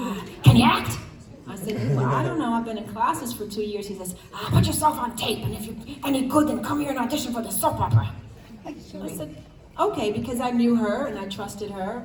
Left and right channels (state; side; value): identical; both; correlation 1.00